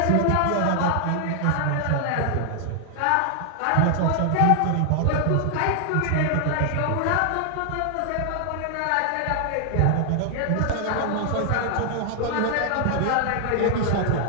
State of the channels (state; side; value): different; both; correlation 0.00